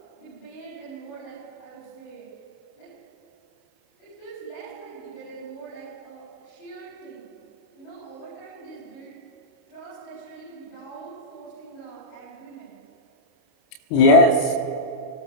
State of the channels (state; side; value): late; right; 29 ms